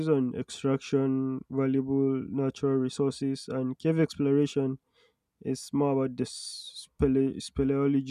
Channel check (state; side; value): identical; both; correlation 1.00